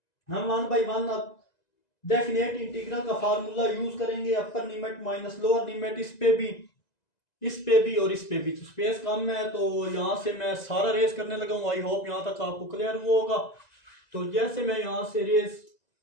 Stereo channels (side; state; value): right; late; 2.0 ms